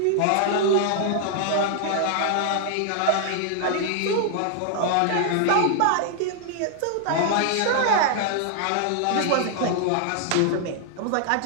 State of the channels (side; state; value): both; different; correlation 0.00